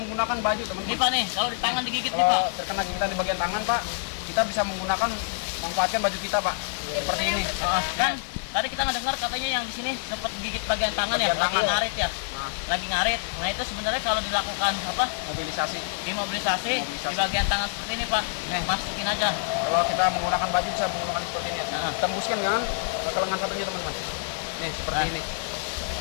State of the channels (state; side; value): silent; right; digital silence